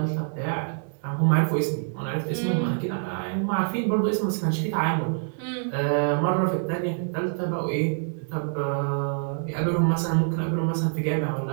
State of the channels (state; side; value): silent; left; digital silence